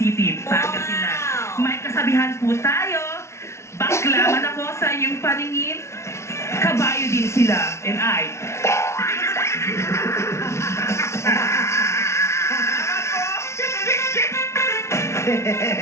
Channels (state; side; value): late; right; 0.13 ms